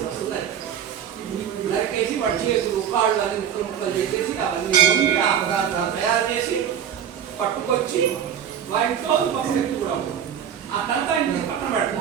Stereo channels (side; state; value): left; quieter; 8.8 dB